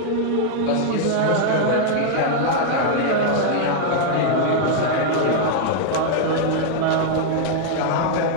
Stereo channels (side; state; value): both; different; correlation 0.00